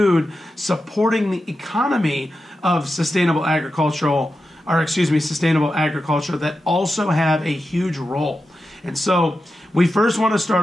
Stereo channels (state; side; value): normal; both; correlation 0.90